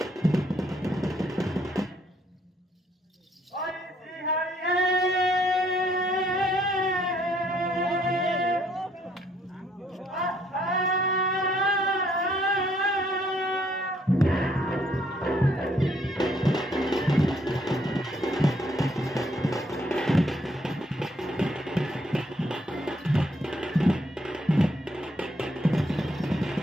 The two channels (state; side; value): normal; both; correlation 0.68